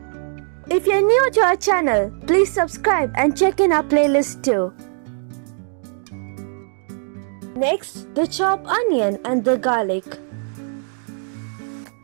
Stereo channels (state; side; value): silent; left; 58 dB below the other